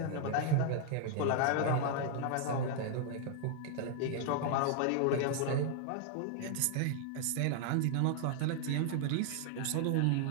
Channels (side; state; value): both; different; correlation 0.00